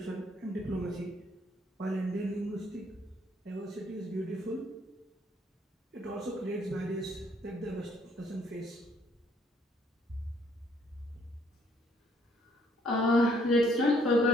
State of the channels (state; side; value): normal; both; correlation 0.66